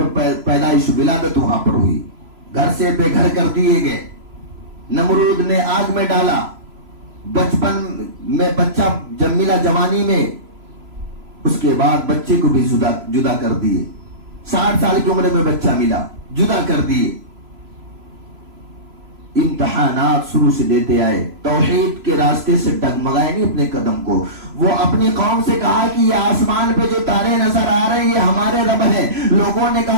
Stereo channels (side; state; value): left; late; 3.0 ms